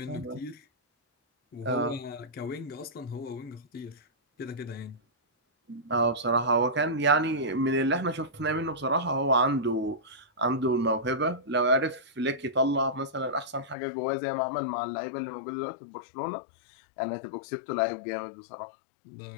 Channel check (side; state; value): right; drops out; at 13.8 s